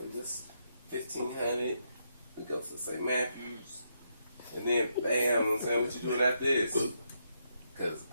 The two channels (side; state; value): both; inverted; correlation -0.80